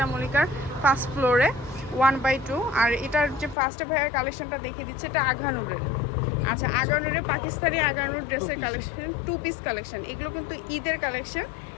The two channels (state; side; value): drops out; right; at 3.6 s